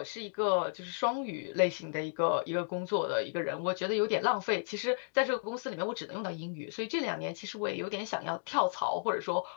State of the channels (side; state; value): right; silent; digital silence